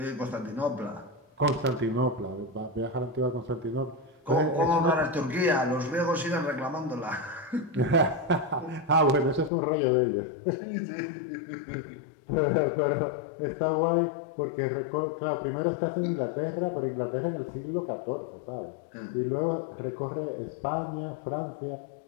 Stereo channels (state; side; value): drops out; right; at 9.5 s